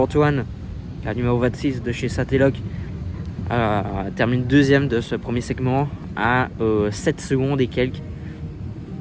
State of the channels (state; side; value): identical; both; correlation 1.00